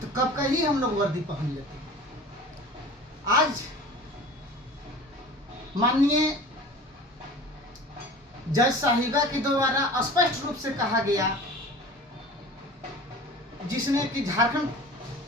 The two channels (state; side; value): normal; both; correlation 0.40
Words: कब का ही हम लोग वर्दी पहन लेते। आज माननीय जज साहिबा के द्वारा स्पष्ट रूप से कहा गया, जिसने कि झारखंड